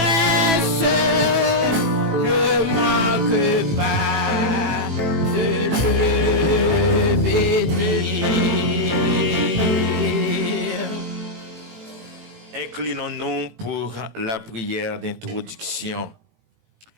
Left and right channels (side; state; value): left; late; 18 ms